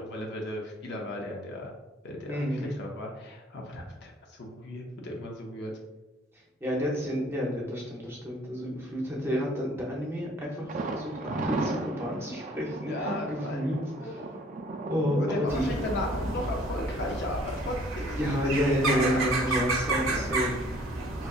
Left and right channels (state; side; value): normal; both; correlation 0.56